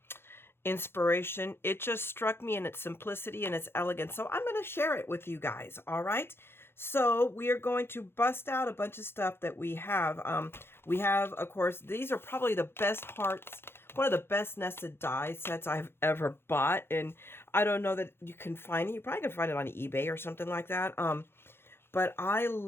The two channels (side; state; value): right; late; 0.11 ms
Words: inspiration, it just struck me in its simplicity and its elegance. So I'm going to share it with you guys. All right. So we are going to bust out a bunch of stuff that we have. We have, of course, these are probably the best hearts, one of the best nested die sets I've ever bought. And I don't know that you can find it. You probably can find it on eBay or something like that. But I